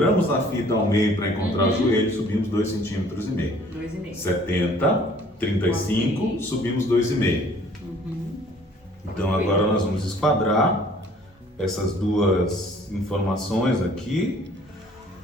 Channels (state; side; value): normal; both; correlation 0.55